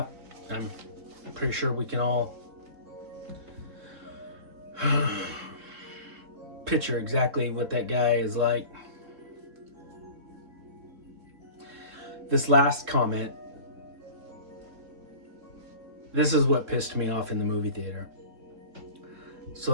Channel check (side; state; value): left; late; 3.7 ms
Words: I'm pretty sure we can all picture exactly what that guy is like. This last comment, this is what pissed me off in the movie theater.